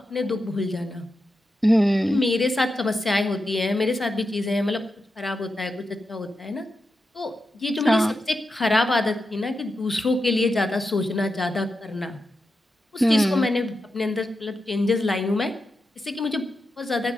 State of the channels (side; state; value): both; normal; correlation 0.89